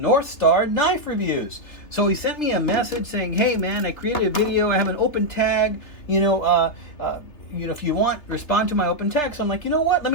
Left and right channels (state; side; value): late; right; 3.3 ms